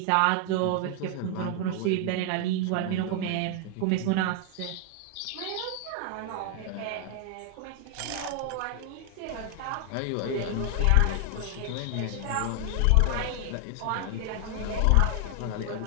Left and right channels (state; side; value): different; both; correlation 0.00